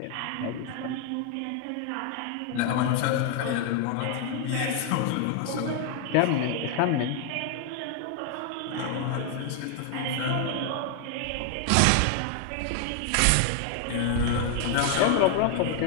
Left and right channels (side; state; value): both; different; correlation 0.00